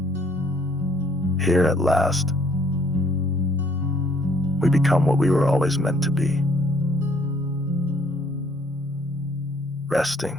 Here at last, We become what we were always meant to be. Resting,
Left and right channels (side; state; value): both; normal; correlation 0.64